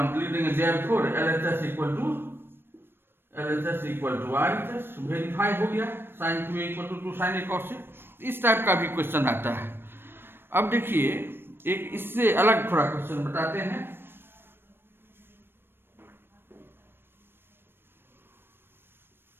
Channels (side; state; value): left; late; 0.10 ms